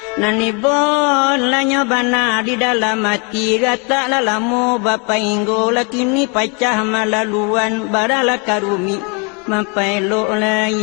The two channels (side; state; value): right; quieter; 33.7 dB